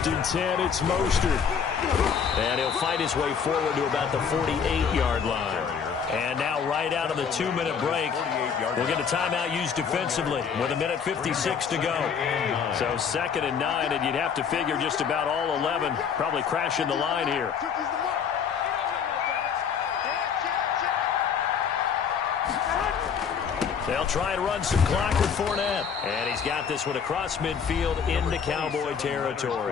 and 10, it's Mostert. And he'll fight his way forward to about the 48-yard line. And now right out of the 2-minute break, we'll get a timeout used defensively with 1:56 to go. So 2nd and 9, and you'd have to figure just about all 11 probably crashing the line here. They'll try and run some clock with Fournette. And he's got this one across midfield into Cowboy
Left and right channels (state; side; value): quieter; right; 6.9 dB